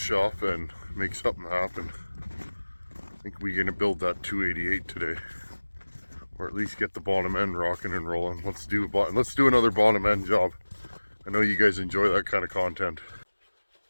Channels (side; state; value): both; inverted; correlation -1.00